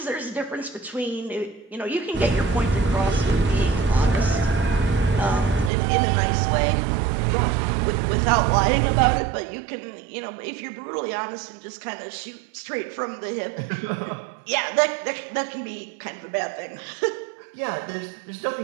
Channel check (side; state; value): left; drops out; at 5.7 s